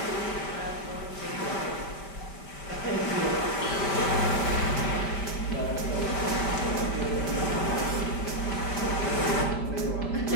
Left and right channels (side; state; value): right; late; 5.1 ms